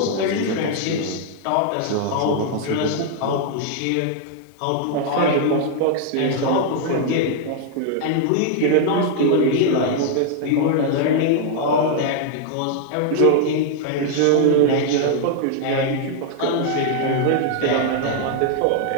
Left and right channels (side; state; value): both; different; correlation 0.00